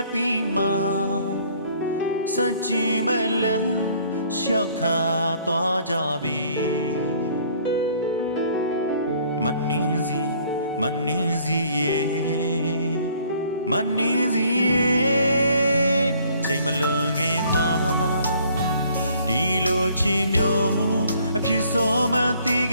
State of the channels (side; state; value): both; inverted; correlation -0.60